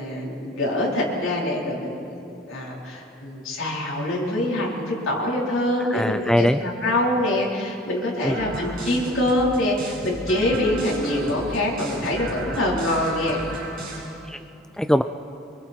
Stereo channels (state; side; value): normal; both; correlation 0.47